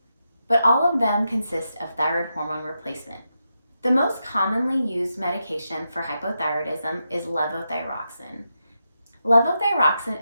but all of them consist of thyroid hormone replacement. The most commonly used medication for hypothyroidism is levothyroxine.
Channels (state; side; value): inverted; both; correlation -0.86